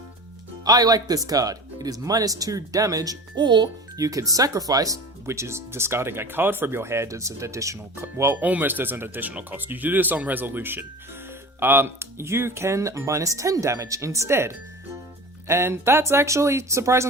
I like this card. It is -2 damage, or you can sacrifice, which is discarding a card from your hand as an additional, almost as an additional cost. You do this on resolution. You can -10 damage instead. And that's actually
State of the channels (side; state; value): both; normal; correlation 0.35